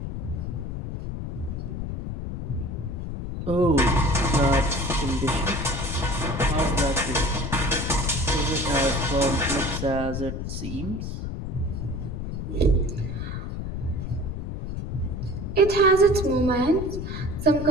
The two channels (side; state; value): left; noise; rumble, 5 dB below the sound